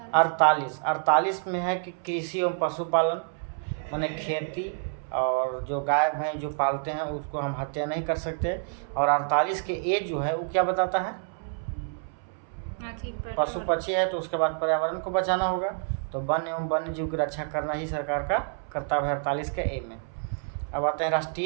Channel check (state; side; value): silent; left; 59 dB below the other